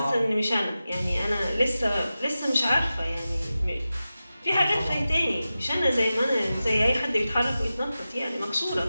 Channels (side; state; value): both; inverted; correlation -0.94